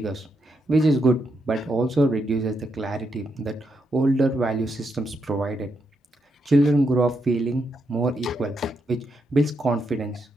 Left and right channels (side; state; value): both; normal; correlation 0.81